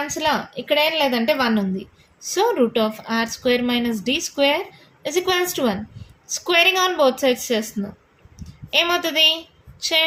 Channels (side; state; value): both; identical; correlation 1.00